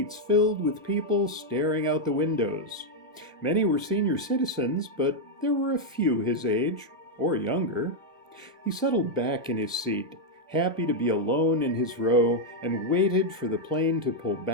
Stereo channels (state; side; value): normal; both; correlation -0.01